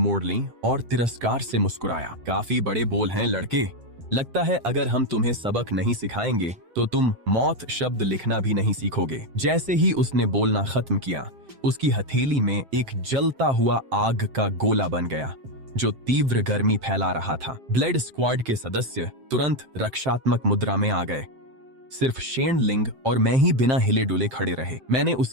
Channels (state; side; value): late; left; 7.6 ms